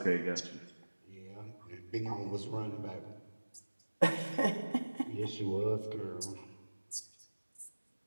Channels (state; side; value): inverted; both; correlation -1.00